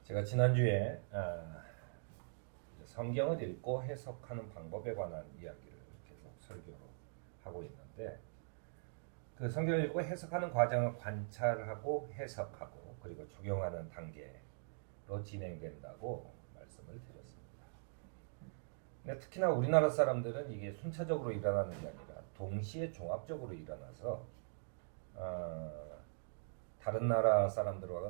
제가 지난주에 성경을 읽고 해석하는 방법에 관한 이야기를 계속 설교로 하고 있는데, 그 성경을 읽고 해석하는 과정을 관찰하고 해석하고 그리고 적용하는 단계로 진행된다고 말씀을 드렸습니다. 근데 특히나 우리나라 사람들은 이게 순차적으로 일어나는 게 아니라 동시에 종합적으로 일어나서 다른 나라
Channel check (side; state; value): left; silent; digital silence